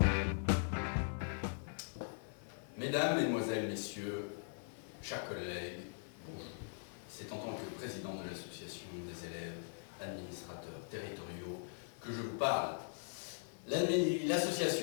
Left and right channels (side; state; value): right; silent; 51 dB below the other